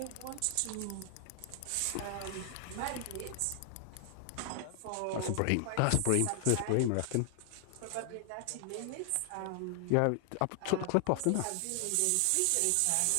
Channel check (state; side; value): different; both; correlation 0.00